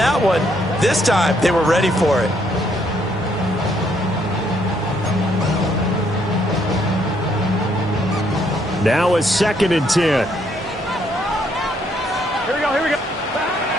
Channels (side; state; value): both; normal; correlation 0.71